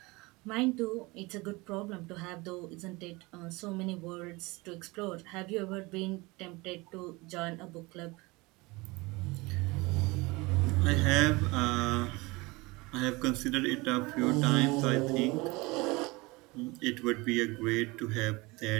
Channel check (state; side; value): quieter; left; 23.8 dB